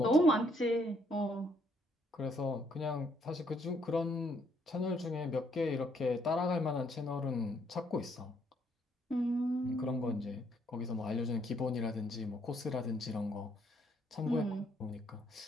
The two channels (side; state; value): both; normal; correlation 0.70